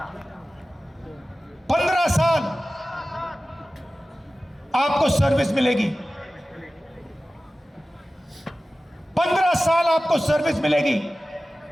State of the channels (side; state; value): both; normal; correlation 0.96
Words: 15 साल आपको सर्विस मिलेगी, 15 साल आपको सर्विस मिलेगी।